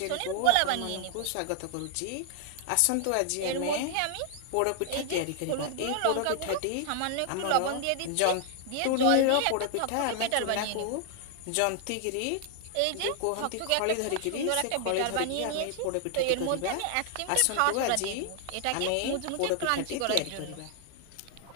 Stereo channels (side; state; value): both; different; correlation 0.00